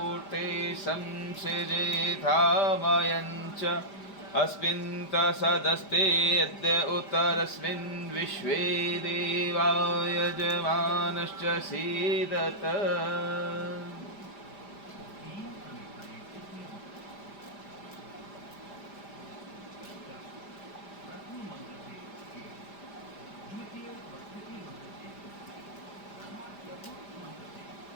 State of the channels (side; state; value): right; late; 5.0 ms